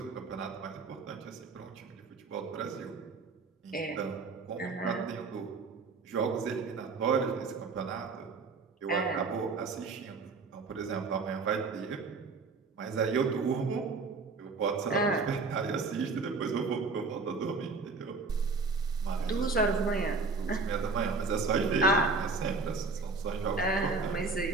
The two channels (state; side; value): quieter; left; 4.1 dB